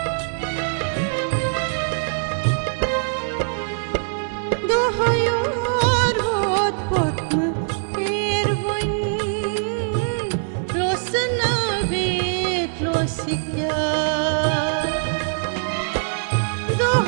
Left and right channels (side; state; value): left; silent; digital silence